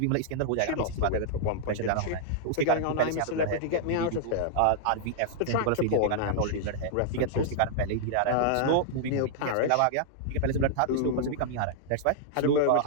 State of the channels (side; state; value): both; different; correlation -0.01